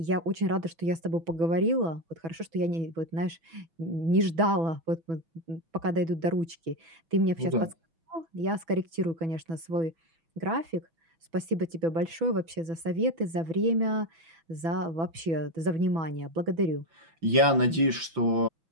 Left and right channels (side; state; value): left; late; 6.1 ms